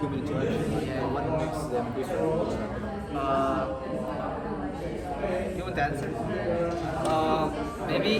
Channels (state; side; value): identical; both; correlation 1.00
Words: interaction. What makes them different? You want to answer? Maybe